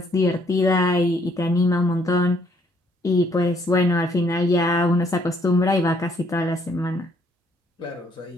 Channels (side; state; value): both; normal; correlation 0.67